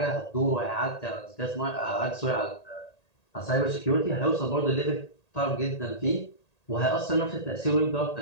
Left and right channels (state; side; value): late; right; 1.8 ms